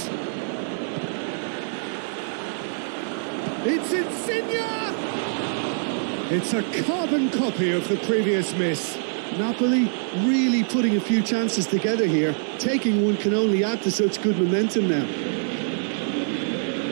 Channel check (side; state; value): left; silent; 62 dB below the other